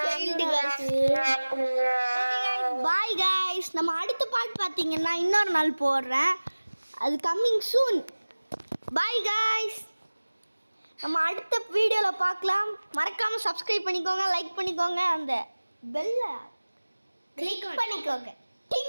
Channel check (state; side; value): inverted; both; correlation -1.00